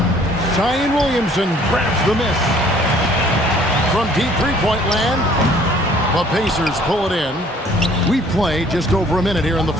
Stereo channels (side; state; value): both; normal; correlation 0.57